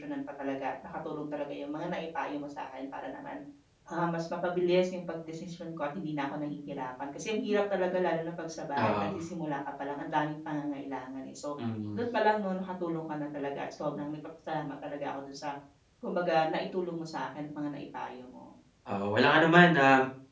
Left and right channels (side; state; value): both; identical; correlation 1.00